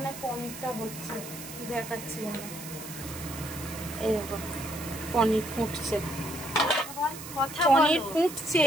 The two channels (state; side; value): noise; right; hiss, 12 dB below the sound